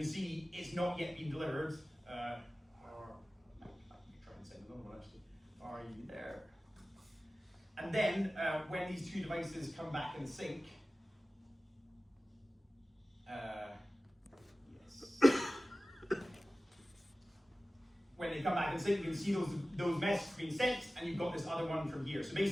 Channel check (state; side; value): normal; both; correlation 0.96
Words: see it's not yet been delivered. I can try and send another one actually. Are you there? And then when these two devices come back in sync, when they come back in sync, you can see those messages being sent, and you've got this other one from here. So